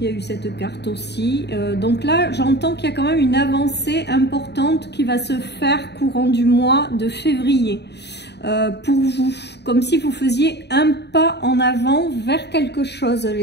a eu cette carte aussi. Donc là, j'entends qu'il y a quand même une avancée importante qui va se faire courant du mois de février. Pour vous, comme si vous faisiez un pas en avant vers quelque chose,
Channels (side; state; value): right; late; 0.49 ms